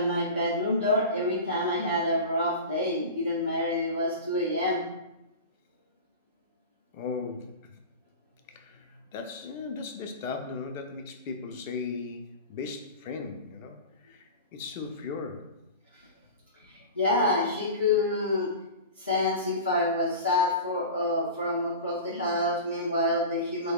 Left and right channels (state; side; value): inverted; both; correlation -0.32